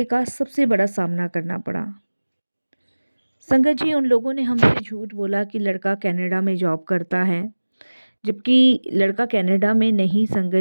का सबसे बड़ा सामना करना पड़ा। संगत जी, उन लोगों ने हमसे झूठ बोला कि लड़का कनाडा में जॉब करता है, जबकि लड़का कनाडा में नहीं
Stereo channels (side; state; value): both; inverted; correlation -1.00